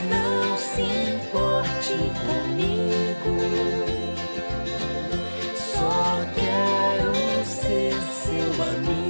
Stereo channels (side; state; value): both; inverted; correlation -1.00